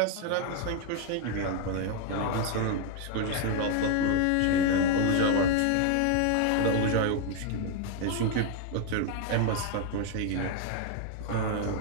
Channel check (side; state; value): both; different; correlation 0.01